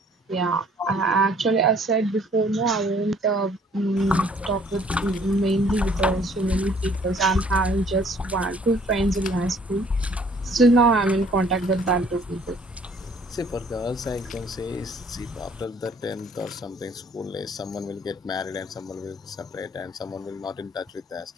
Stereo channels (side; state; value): both; normal; correlation 0.59